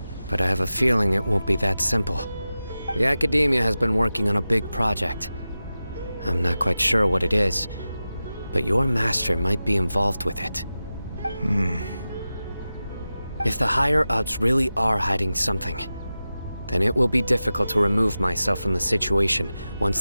but I have a feeling it won't be that simple. The Academia has been working on a big project. I'm not quite sure what it is, but your master might be involved with it. If the higher-ups really are hiding something, then it will be difficult to remove myself from the situation once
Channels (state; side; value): inverted; both; correlation -0.94